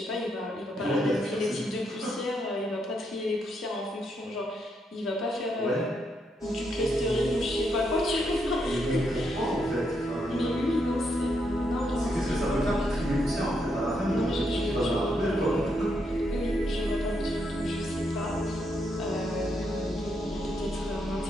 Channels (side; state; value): both; normal; correlation 0.79